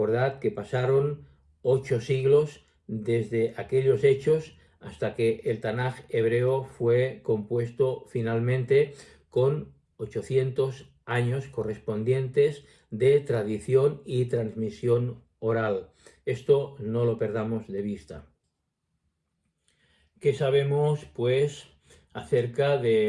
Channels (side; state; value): both; identical; correlation 1.00